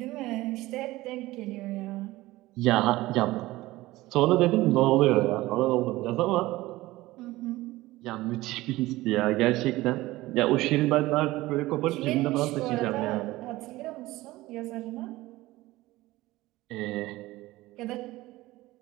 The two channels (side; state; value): left; quieter; 18.3 dB